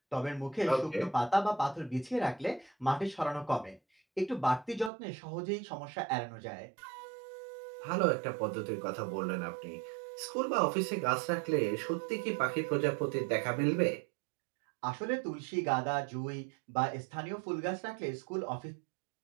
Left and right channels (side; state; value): left; drops out; at 4.9 s